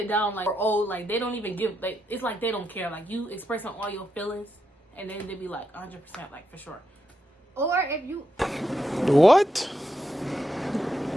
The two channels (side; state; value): both; normal; correlation 0.83